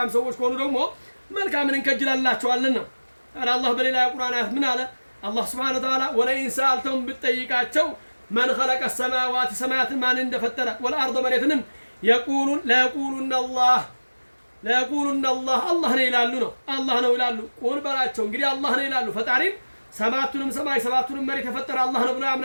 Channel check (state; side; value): inverted; both; correlation -1.00